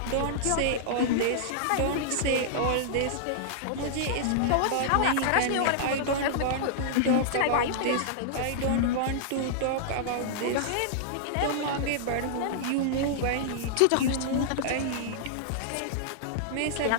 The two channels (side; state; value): both; different; correlation -0.01